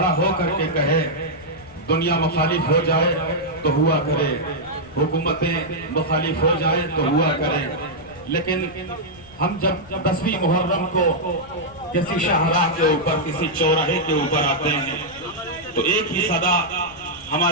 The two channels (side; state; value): left; noise; rumble, 22 dB below the sound